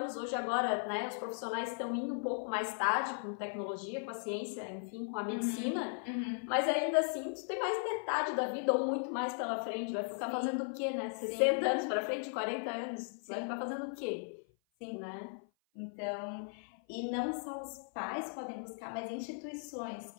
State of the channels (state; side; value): silent; right; 53 dB below the other